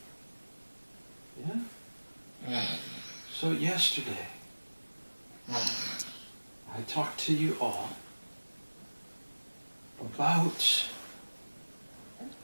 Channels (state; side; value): inverted; both; correlation -1.00